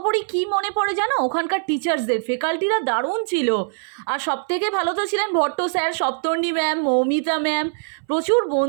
কি মনে পড়ে জানো, ওখানকার টিচার্সদের ফ্যাকাল্টিরা দারুণ ছিল। আর সব থেকে ভালো তো ছিলেন Bhatta sir, Saptarni ma'am, Moumita ma'am. প্রচুর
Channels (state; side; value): silent; left; 61 dB below the other